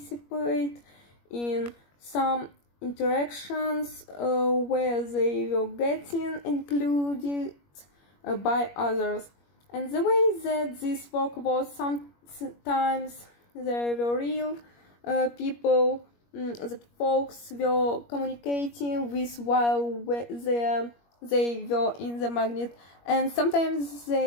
in some interactions where they were getting included by others. And the way that this worked was, sometimes there were real people that folks were communicating with while they were in the magnet, and sometimes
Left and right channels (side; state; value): right; late; 21 ms